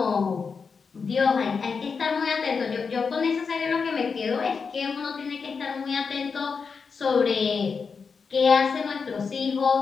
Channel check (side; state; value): right; quieter; 5.4 dB